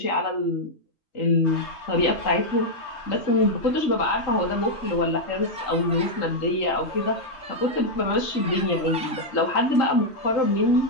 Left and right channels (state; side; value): late; right; 3.8 ms